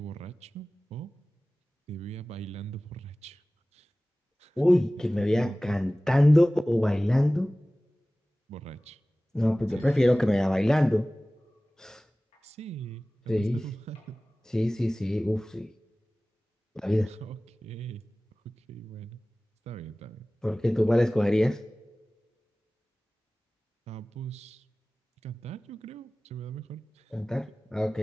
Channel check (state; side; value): normal; both; correlation 0.98